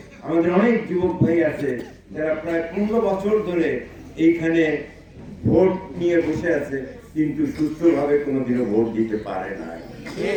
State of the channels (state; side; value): identical; both; correlation 1.00